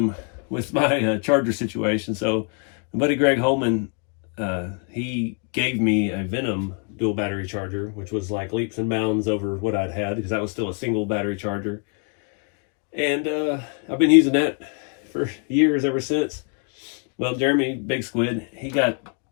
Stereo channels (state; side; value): quieter; right; 39.6 dB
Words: with my Charger situation. So my buddy Greg Holman, he gave me a Venom dual battery charger, which was like leaps and bounds over what I'd had, because that was still a single battery charger. And I've been using that for years ever since. Well, Jeremy Big Squid, he got